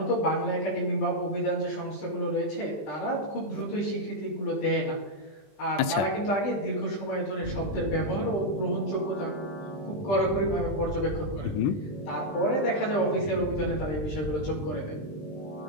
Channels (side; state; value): right; late; 20 ms